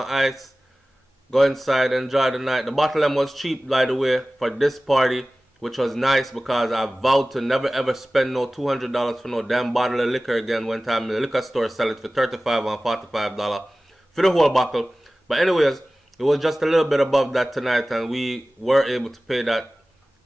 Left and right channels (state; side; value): normal; both; correlation 0.97